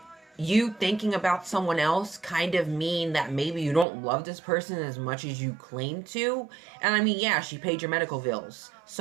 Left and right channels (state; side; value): drops out; left; at 3.9 s